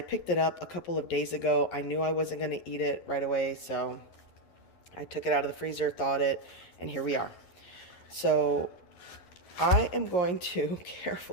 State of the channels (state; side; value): late; right; 11 ms